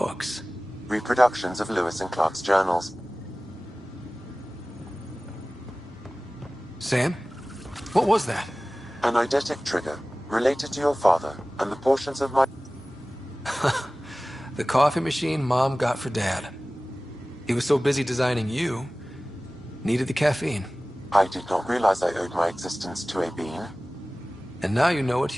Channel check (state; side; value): normal; both; correlation 0.98